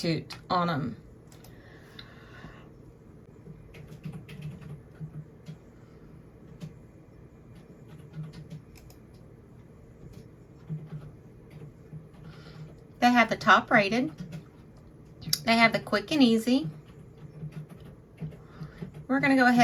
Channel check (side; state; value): both; identical; correlation 1.00